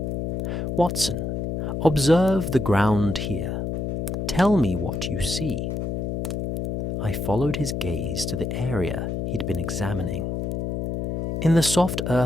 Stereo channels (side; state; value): left; noise; hum, 2 dB below the sound